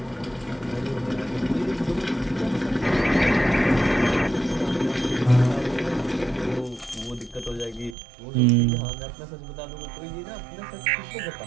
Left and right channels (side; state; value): left; drops out; at 8.0 s